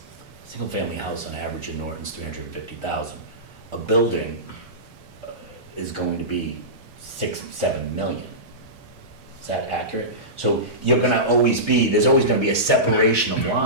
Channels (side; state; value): both; normal; correlation -0.19